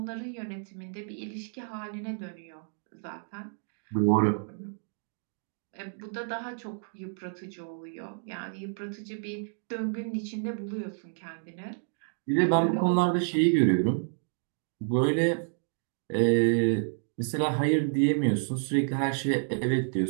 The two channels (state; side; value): silent; left; digital silence